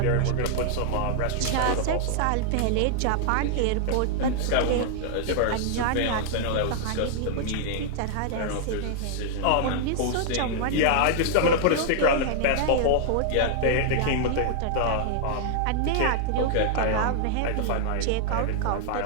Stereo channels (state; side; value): different; both; correlation -0.01